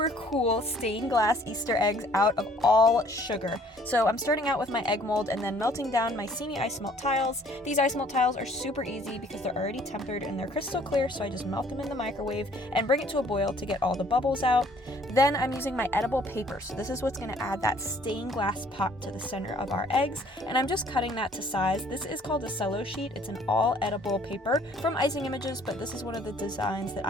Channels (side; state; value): both; normal; correlation 0.58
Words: cool stained glass Easter eggs out of all sugar. So I'm starting out with my egg mold and then melting down my Sidney isomalt tiles. These isomalt tiles are super easy because they're already tempered and they're crystal clear, so I just melt them in the microwave and bring it to a boil to get all the bubbles out. Then I'm using my edible paper, so this is what's going to add that stained glass pop to the center of our eggs, and I'm just cutting that to size. This is called a cello sheet. It's an all edible paper from Icing Images, but this is one of the designs that